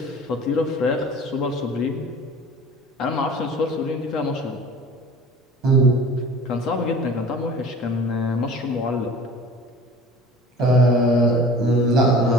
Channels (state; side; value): normal; both; correlation 0.42